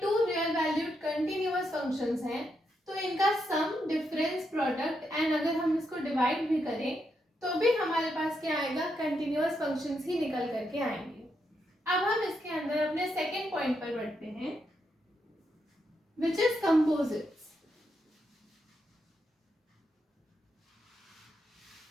real valued continuous functions हैं तो इनका सम, डिफरेंस, प्रोडक्ट एंड अगर हम इसको डिवाइड भी करें तो भी हमारे पास क्या आएगा, कंटिन्यूअस फंक्शंस ही निकल करके आएंगे। अब हम इसके अंदर अपने सेकेंड पॉइंट पर बढ़ते हैं विच इज कंपोजिट्स।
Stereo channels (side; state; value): both; normal; correlation 0.81